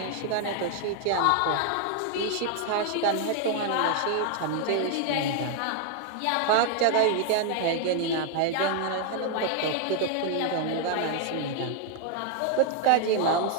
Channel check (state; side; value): different; both; correlation 0.00